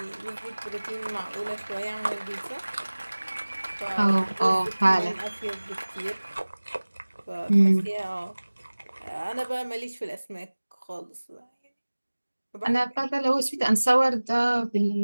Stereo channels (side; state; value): both; inverted; correlation -1.00